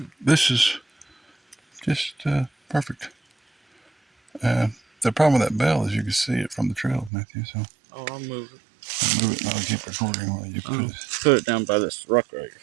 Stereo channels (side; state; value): left; drops out; at 7.1 s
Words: This is just perfect. The problem with that bell is you can see it from the trail, Matthew. So I'll move it. I'll move it and I'll keep recording while you put it. Put it down by this rock right at